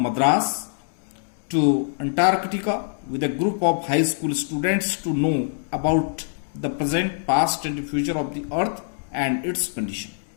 Madras to Antarctica with a group of high school students to know about the present, past and future of the earth and its condition.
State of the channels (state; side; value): silent; right; digital silence